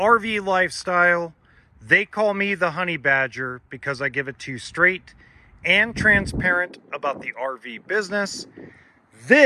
Lifestyle. They call me the Honey Badger because I give it to you straight and transparent about the RV business.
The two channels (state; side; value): identical; both; correlation 1.00